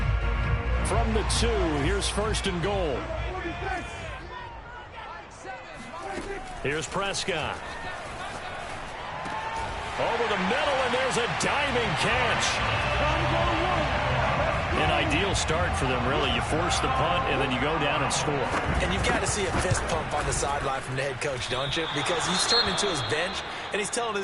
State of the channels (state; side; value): identical; both; correlation 1.00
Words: From the 2, here's 1st and goal. Here's Prescott. Over the middle, and there's a diving catch. An ideal start for them, really. You force the punt, and then you go down and score. And you've got to see a fist pump on the sideline from the head coach, don't you? Because he's turned into his bench, and he's telling